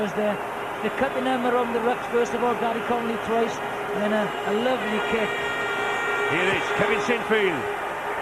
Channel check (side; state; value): both; identical; correlation 1.00